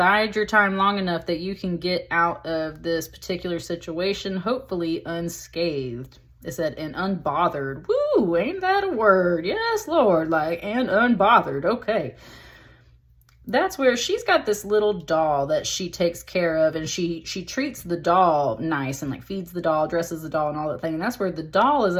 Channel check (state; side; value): identical; both; correlation 1.00